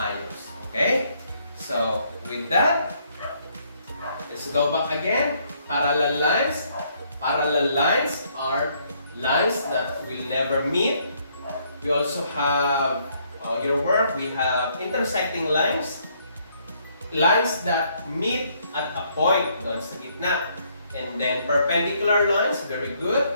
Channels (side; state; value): both; inverted; correlation -0.69